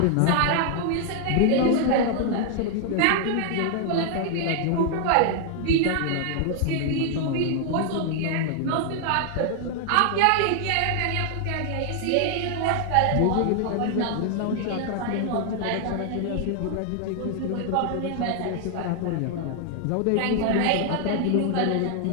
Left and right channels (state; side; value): different; both; correlation 0.00